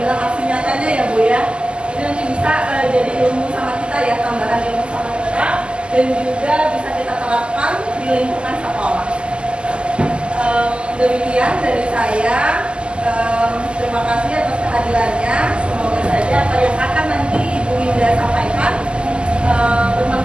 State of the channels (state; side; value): late; left; 0.051 ms